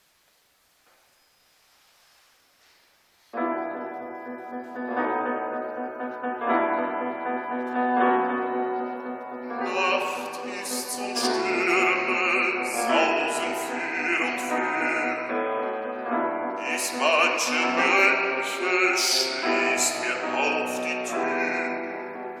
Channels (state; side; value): identical; both; correlation 1.00